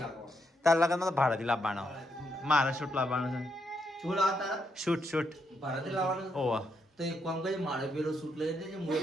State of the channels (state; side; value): normal; both; correlation 0.78